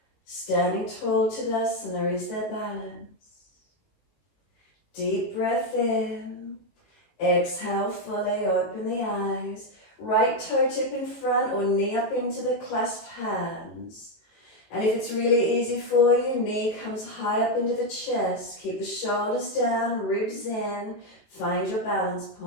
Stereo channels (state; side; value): late; right; 19 ms